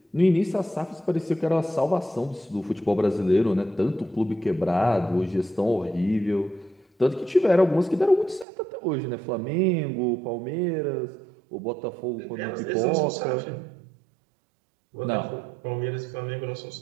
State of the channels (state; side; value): drops out; left; at 8.5 s